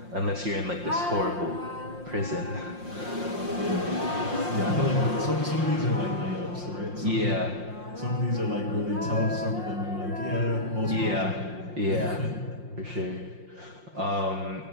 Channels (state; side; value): late; left; 5.7 ms